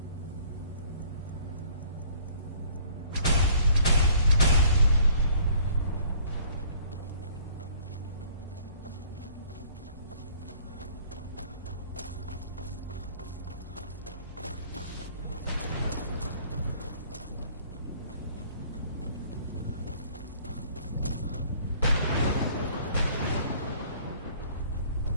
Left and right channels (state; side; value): inverted; both; correlation -0.57